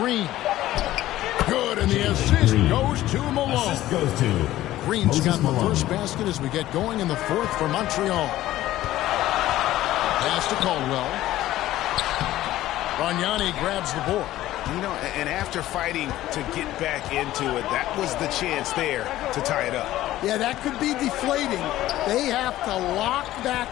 Good, and the assist goes to Malone. Green's got the first basket as we get going in the 4th for Montreal. Pass to Caldwell. Bargnani grabs the board. You know, and after fighting to get back into it, that was the chance there to tie it up. Yeah, that could be deflating. They have to lock back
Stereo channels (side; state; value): right; quieter; 14.8 dB